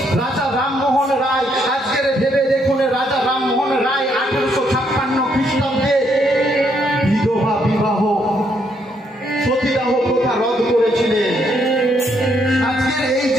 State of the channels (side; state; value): both; normal; correlation 0.73